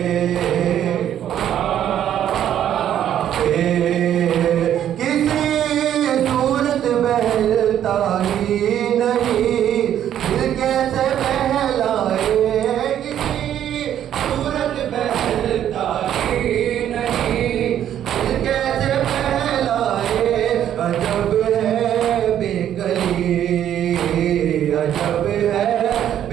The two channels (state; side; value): quieter; left; 10.6 dB